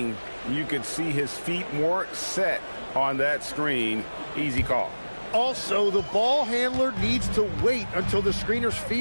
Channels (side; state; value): both; inverted; correlation -1.00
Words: you could see his feet more set on that screen. Easy call. Also, the ball handler needs to wait until the screener's